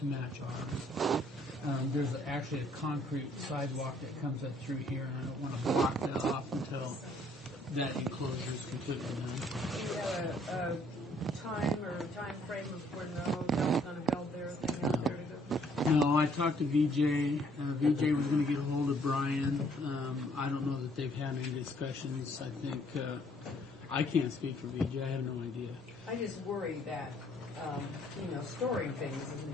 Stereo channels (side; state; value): both; normal; correlation 0.64